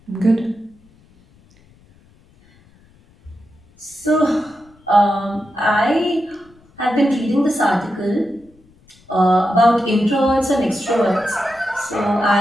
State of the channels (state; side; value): noise; left; rumble, 30 dB below the sound